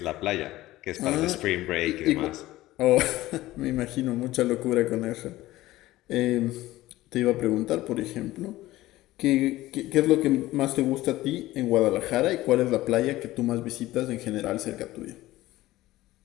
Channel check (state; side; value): quieter; right; 16.7 dB